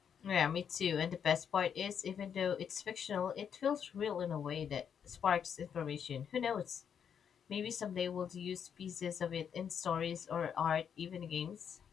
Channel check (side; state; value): right; quieter; 7.8 dB